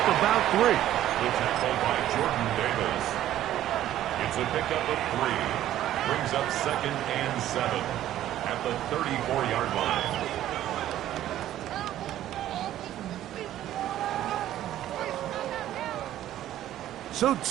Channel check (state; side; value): quieter; left; 12.7 dB